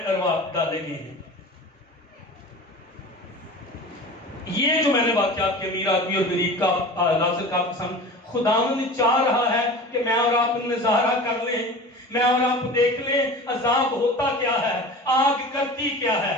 ارواح ڈالے گئے ہیں؟ یہ جو میں نے واقعات کے امیر آدمی اور غریب کا لازر کا قسم، خداوند چاہ رہا ہے کہ میں اور آپ نظارہ کر لیں، میں اور آپ دیکھ لیں عذاب ہوتا کیا ہے، آگ کرتی کیا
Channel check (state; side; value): normal; both; correlation 0.36